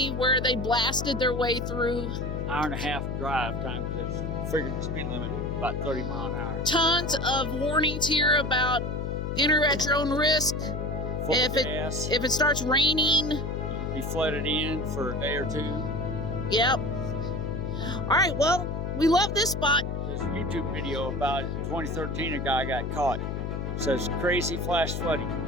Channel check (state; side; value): noise; left; hum, 3 dB below the sound